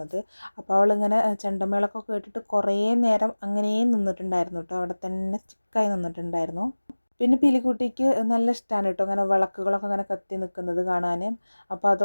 അപ്പോൾ അവളിങ്ങനെ ചെണ്ടമേളൊക്കെ കേട്ടിട്ട് കുറേ നേരം അങ്ങനെ നിന്നിട്ടുണ്ടായിരുന്നു കേട്ടോ, അവിടെ തന്നെ സ്റ്റിക്കായി നിന്നിട്ടുണ്ടായിരുന്നു. പിന്നെ പീലിക്കുട്ടിക്ക് നല്ല ഇഷ്ടമാണ് കേട്ടോ അങ്ങനെ വിളക്കുകളൊക്കെ അങ്ങനെ കത്തി നിൽക്കുന്നത് കാണാൻ. അപ്പോൾ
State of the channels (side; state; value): both; inverted; correlation -1.00